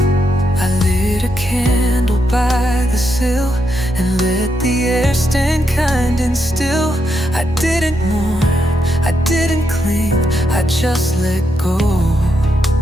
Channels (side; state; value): both; normal; correlation 0.81